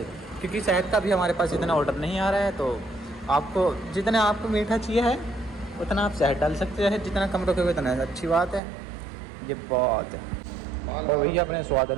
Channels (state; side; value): drops out; left; at 8.6 s